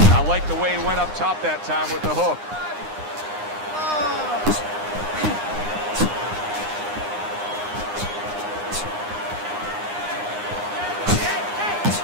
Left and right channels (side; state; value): left; late; 9.8 ms